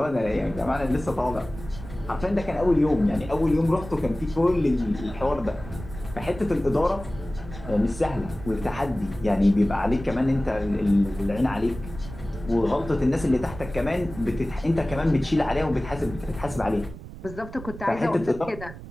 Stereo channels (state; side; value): noise; right; rumble, 13 dB below the sound